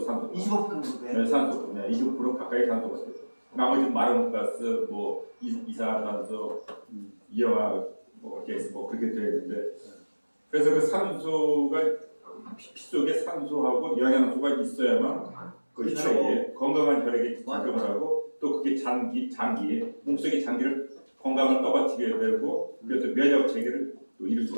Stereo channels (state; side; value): inverted; both; correlation -1.00